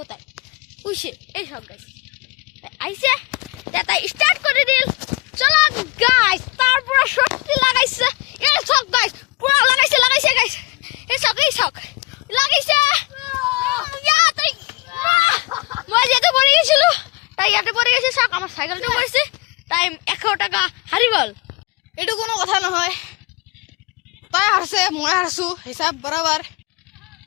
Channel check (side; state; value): right; quieter; 24.2 dB